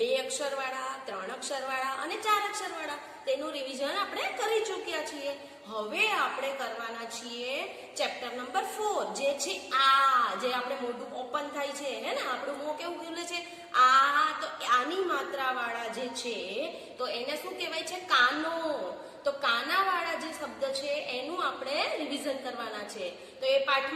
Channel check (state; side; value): identical; both; correlation 1.00